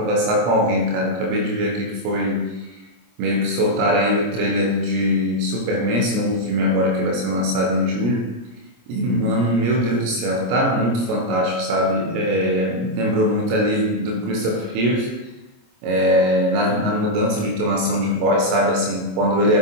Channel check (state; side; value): late; left; 25 ms